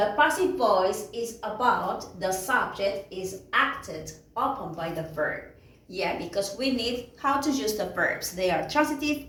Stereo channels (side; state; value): both; identical; correlation 1.00